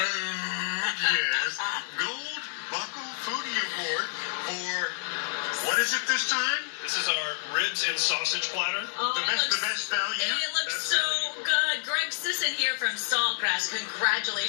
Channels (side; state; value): right; silent; digital silence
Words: yes. Gold Buckle Foodie Award for, what is it this time? This is our ribs and sausage platter. Oh, The best value. It looks Best so value. good. Greg Sisson here from Saltgrass.